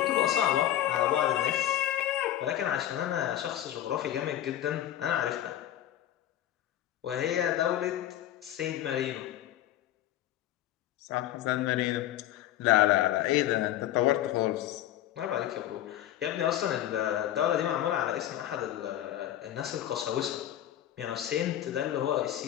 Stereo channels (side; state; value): right; quieter; 12.5 dB